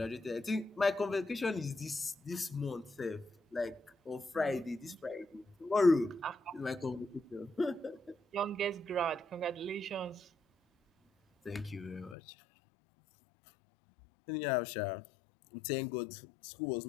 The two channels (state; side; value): drops out; right; at 12.2 s